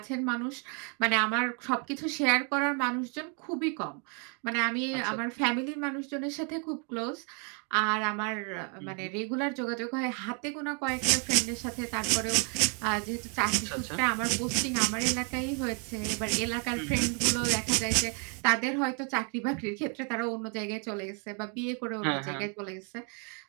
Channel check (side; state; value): left; quieter; 38.1 dB